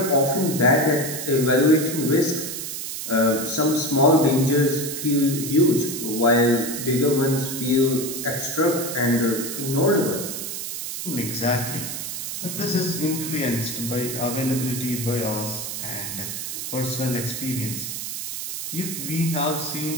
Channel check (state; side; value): noise; right; hiss, 6 dB below the sound